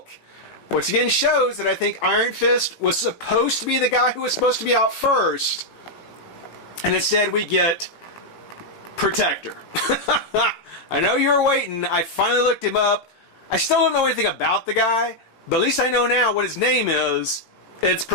which again shows that I think Iron Fist was supposed to be the guy who was supposed to be out first, and instead we get Protector. I know you were waiting. I finally looked him up. I still don't know anything about the guy, but at least I know now what his name is. It's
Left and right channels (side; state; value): right; late; 18 ms